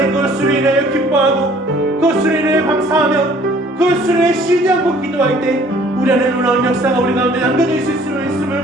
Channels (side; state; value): both; normal; correlation 0.55